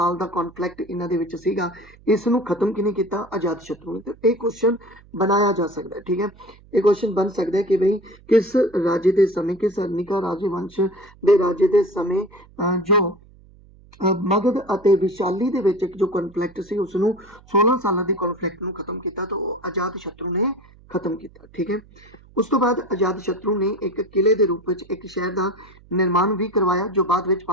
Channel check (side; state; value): right; noise; hum, 25 dB below the sound